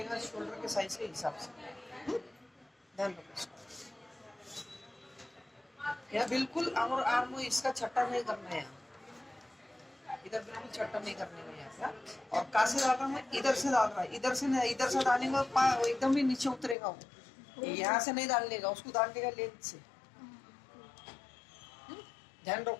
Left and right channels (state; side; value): drops out; right; at 16.8 s